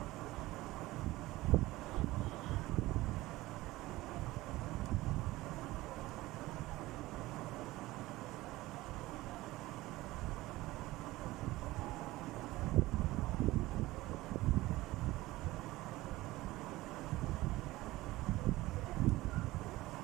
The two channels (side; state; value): left; quieter; 18.4 dB